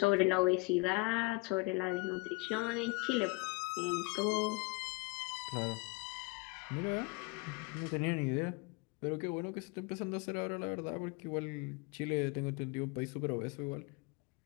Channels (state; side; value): quieter; right; 26.6 dB